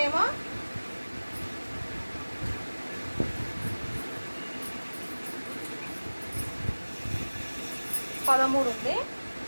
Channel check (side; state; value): both; inverted; correlation -1.00